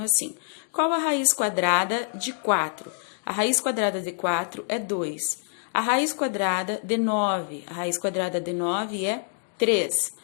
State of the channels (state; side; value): silent; right; digital silence